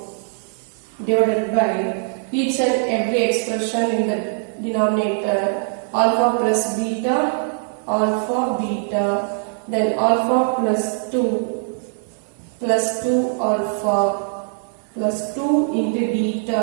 divided by each and every expression in the denominator. Alpha plus beta, then alpha plus 2 plus 2 alpha plus 2 into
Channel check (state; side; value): silent; left; 61 dB below the other